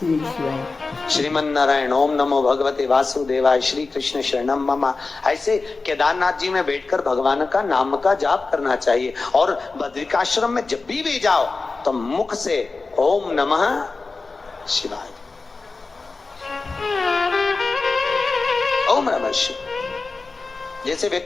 श्रीमन नारायण, ओम नमो भगवते वासुदेवाय, श्री कृष्ण शरणम मम। ऐसे केदारनाथ जी में बैठकर भगवान का नाम का जाप करना चाहिए। और बद्रिकाश्रम में जब भी जाओ तो मुख से ओम नमः शिवाय, ओम नमः शिवाय। जैसे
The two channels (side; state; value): right; quieter; 3.9 dB